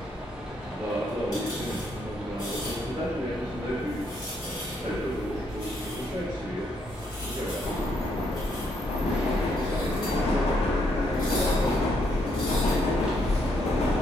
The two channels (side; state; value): both; normal; correlation 0.74